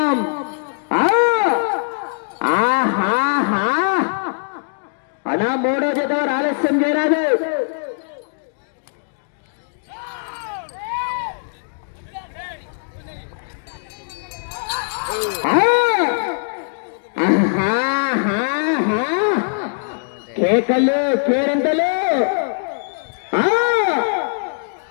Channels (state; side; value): silent; right; digital silence